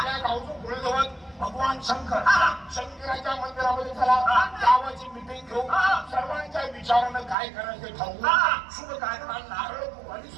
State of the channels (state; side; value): drops out; left; at 7.4 s